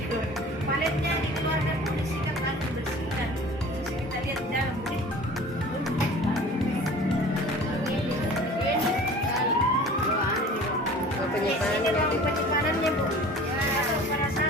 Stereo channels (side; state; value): both; normal; correlation 0.43